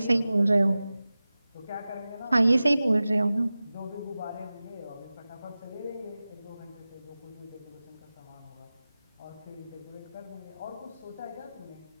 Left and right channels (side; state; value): both; inverted; correlation -0.96